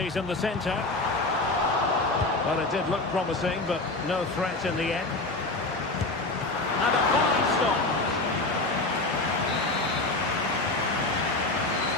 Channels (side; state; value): right; quieter; 3.1 dB